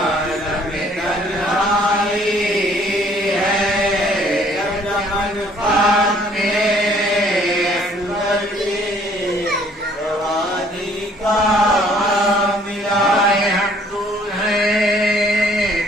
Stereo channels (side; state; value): both; normal; correlation 0.60